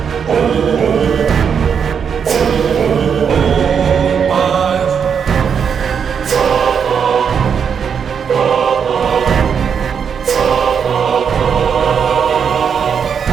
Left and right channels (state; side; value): quieter; left; 7.0 dB